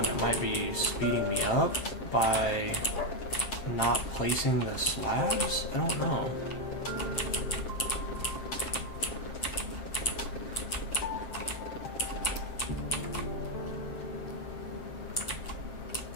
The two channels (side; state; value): right; late; 7.5 ms